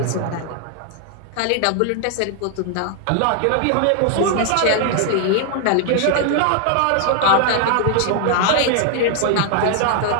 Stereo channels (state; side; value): different; both; correlation 0.00